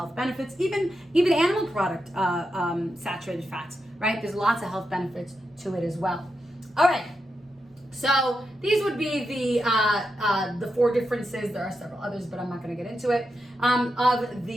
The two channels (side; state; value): both; normal; correlation 0.87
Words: benefits. Even animal product saturated fats, right? There's lots of health benefits to it as well. All right. So these would be the 4 differences. There are several others, but I'm not going to get into it. Of